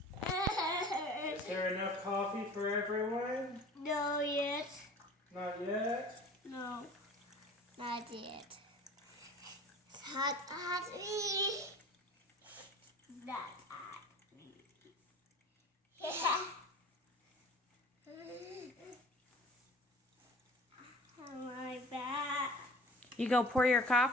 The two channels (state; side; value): normal; both; correlation 0.44